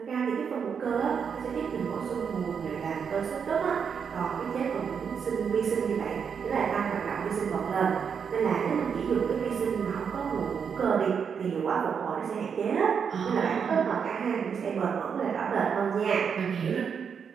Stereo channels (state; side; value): quieter; left; 6.8 dB